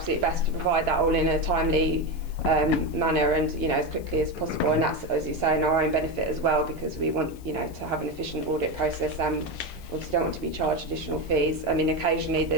best to provide that all in a timely manner and, you know, as quickly as possible. And that's, as you say, in our own benefit as well, because we want, you know, to have an efficient audit process, and obviously don't want to be charged additional fees. I mean, occasionally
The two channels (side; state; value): left; noise; hiss, 24 dB below the sound